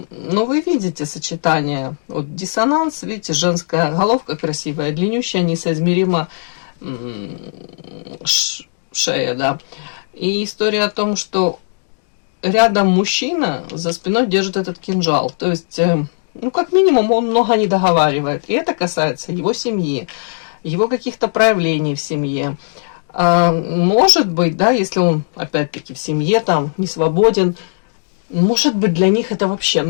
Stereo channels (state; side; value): silent; right; digital silence